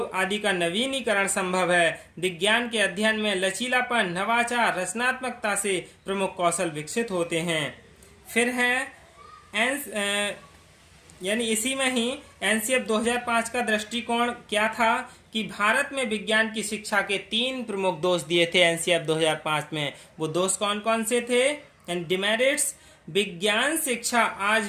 आदि का नवीनीकरण संभव है। विज्ञान के अध्ययन में लचीलापन, नवाचार, रचनात्मकता से प्रमुख कौशल विकसित होते हैं। फिर है यानी इसी में ही एनसीएफ 2005 का दृष्टिकोण क्या था कि भारत में विज्ञान की शिक्षा के 3 प्रमुख दोष दिए थे एनसीएफ 2005 में। वो दोष कौन कौन से थे? एंड डिमेरिट्स, विज्ञान शिक्षा आज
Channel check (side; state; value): both; identical; correlation 1.00